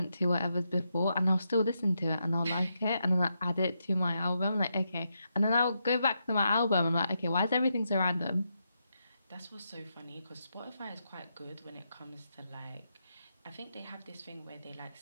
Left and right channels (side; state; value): both; inverted; correlation -0.83